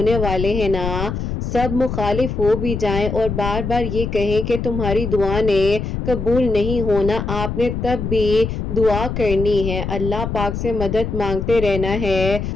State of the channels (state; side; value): noise; left; rumble, 4 dB below the sound